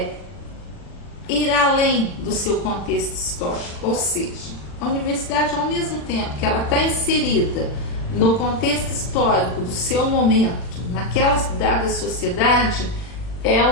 ir além do seu contexto histórico, ou seja, a universidade, ao mesmo tempo que ela está inserida no contexto histórico do seu momento, naquela dada sociedade,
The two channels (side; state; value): right; late; 40 ms